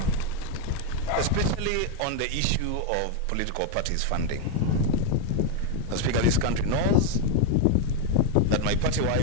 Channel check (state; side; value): different; both; correlation 0.01